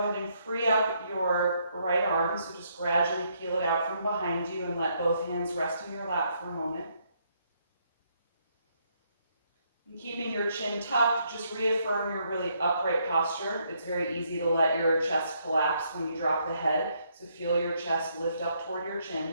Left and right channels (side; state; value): both; inverted; correlation -0.73